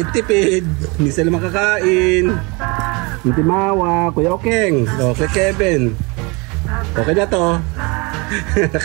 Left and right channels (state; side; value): quieter; left; 28.0 dB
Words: Hindi sila makakain. Hindi Mawa. Kuya Okeng. Okay, Kevin. Okay na to.